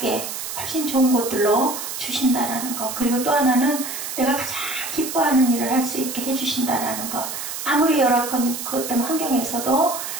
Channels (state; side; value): noise; right; hiss, 6 dB below the sound